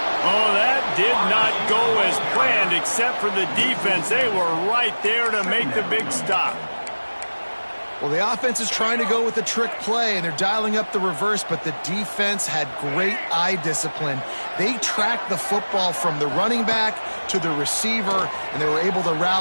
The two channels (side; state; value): both; inverted; correlation -1.00